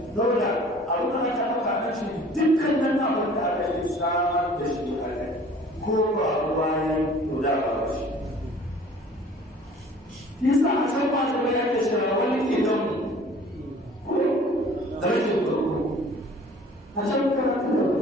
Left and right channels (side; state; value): both; normal; correlation 0.49